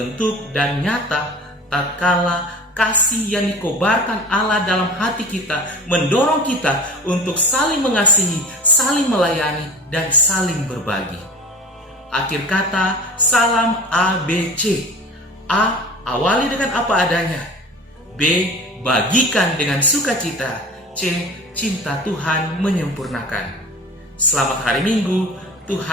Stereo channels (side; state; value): both; normal; correlation 0.37